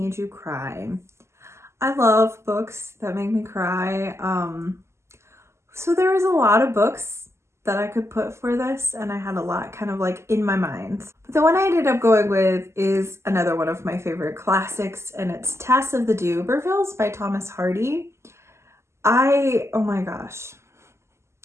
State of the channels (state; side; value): late; left; 0.13 ms